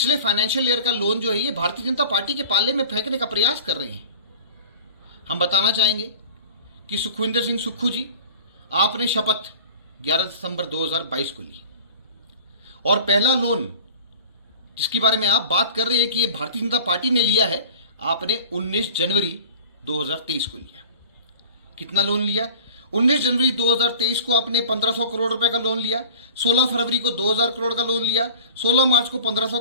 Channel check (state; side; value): inverted; both; correlation -0.42